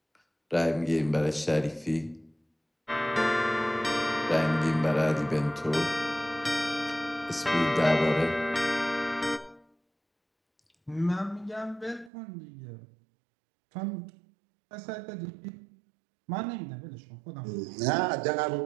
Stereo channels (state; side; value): drops out; left; at 12.1 s